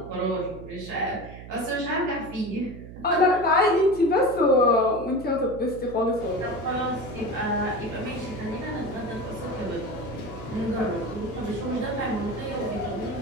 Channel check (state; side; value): noise; right; hum, 14 dB below the sound